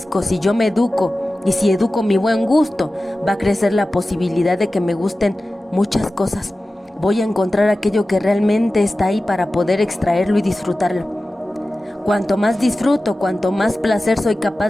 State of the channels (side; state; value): both; normal; correlation 0.95